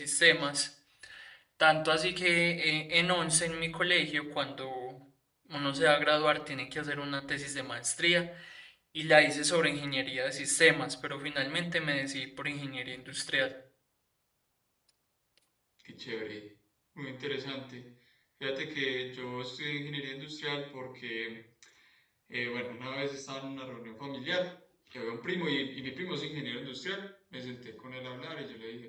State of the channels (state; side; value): identical; both; correlation 1.00